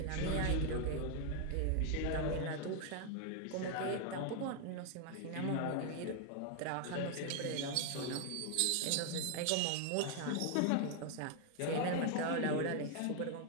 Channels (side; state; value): both; different; correlation 0.00